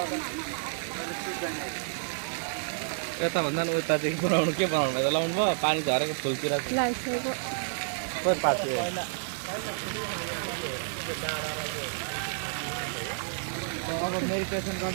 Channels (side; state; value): left; silent; digital silence